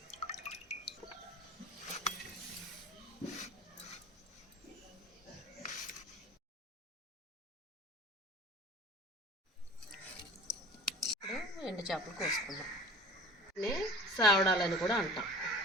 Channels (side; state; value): both; normal; correlation 0.41